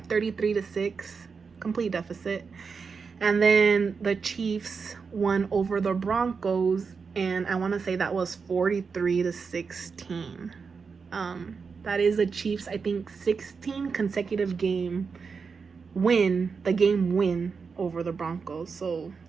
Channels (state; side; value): quieter; left; 5.3 dB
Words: 33-6, complete deficit. And then the Chiefs won over the Broncos, and I want to say that was 43-16. That is the Chiefs, I think, 16 consecutive game win over the Broncos. So